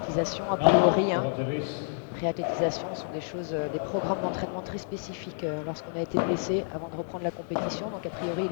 a priori. Hein. Réathlétisation sont des programmes d'entraînement très spécifiques lorsqu'on a été blessé avant de reprendre la compétition. Donc a priori, il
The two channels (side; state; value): right; silent; digital silence